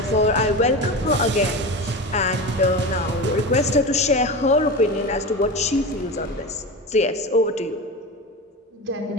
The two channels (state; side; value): normal; both; correlation 0.25